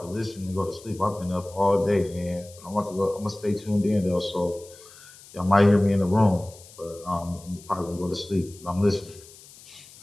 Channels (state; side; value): noise; left; hiss, 21 dB below the sound